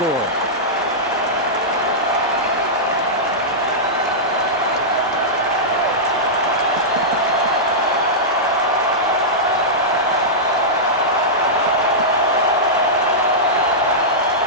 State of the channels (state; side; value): normal; both; correlation -0.12